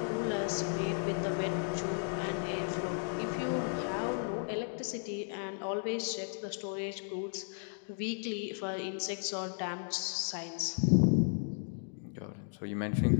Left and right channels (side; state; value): right; silent; digital silence